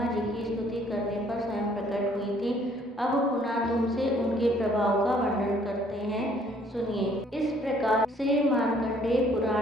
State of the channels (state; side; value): normal; both; correlation 0.61